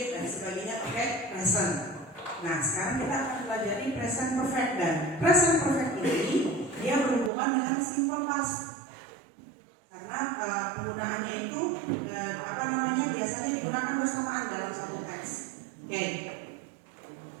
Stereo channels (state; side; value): drops out; left; at 7.3 s